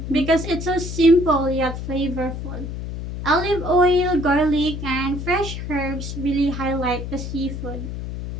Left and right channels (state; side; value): noise; left; hum, 6 dB below the sound